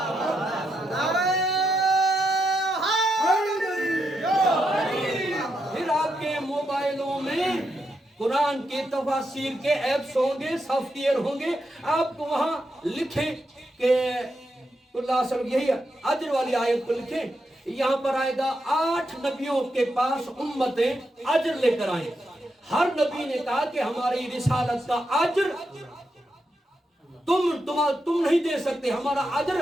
फिर आपके मोबाइलों में कुरान के तफसीर के ऐप्स होंगे, सॉफ्टवेयर होंगे, आपको वहां लिखें कि यही अजर वाली आयत को लिखें, यहाँ पर आएगा 8 नबियों के पास उम्मतें अजर लेकर आए। हर नबी ने कहा कि हमारी रिसालत का अजर तुम नहीं दे सकते, हमारा अजर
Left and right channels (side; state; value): both; normal; correlation 0.83